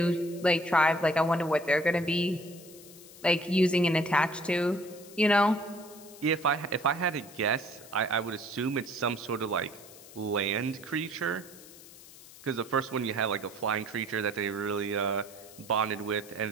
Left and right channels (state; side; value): noise; left; hiss, 19 dB below the sound